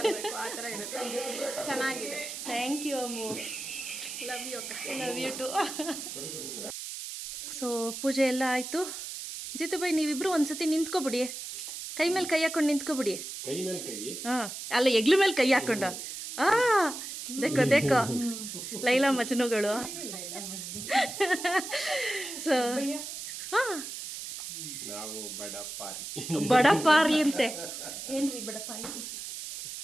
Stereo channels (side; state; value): right; noise; hiss, 8 dB below the sound